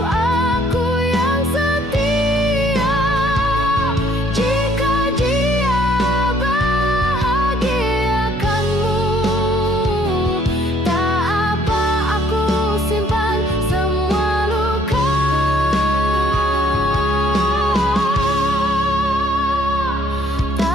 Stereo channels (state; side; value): normal; both; correlation 0.63